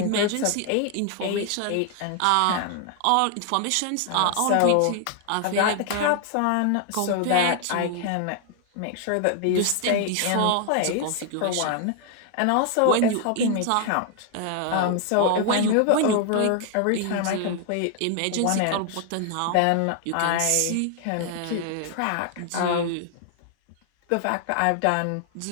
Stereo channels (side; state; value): both; different; correlation 0.00